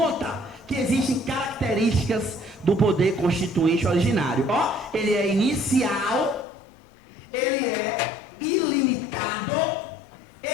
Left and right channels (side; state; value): right; drops out; at 6.5 s